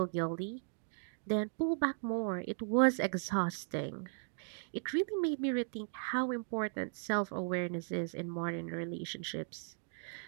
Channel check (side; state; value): left; silent; digital silence